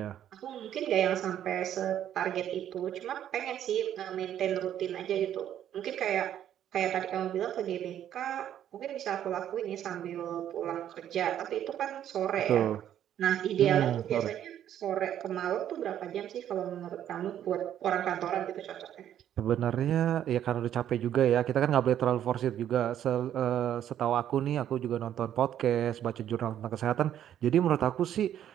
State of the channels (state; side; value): quieter; left; 10.6 dB